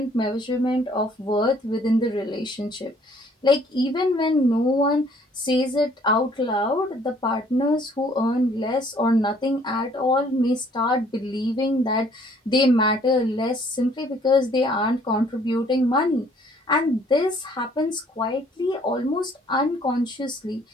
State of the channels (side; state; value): both; normal; correlation 0.60